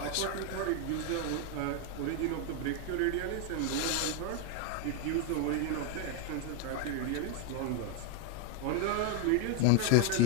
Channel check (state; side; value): different; both; correlation 0.01